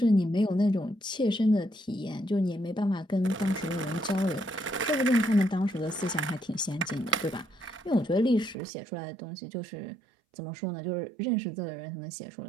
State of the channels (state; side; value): drops out; left; at 8.6 s